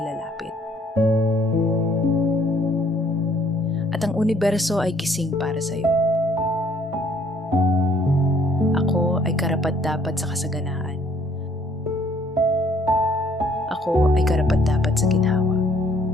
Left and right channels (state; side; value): normal; both; correlation 0.63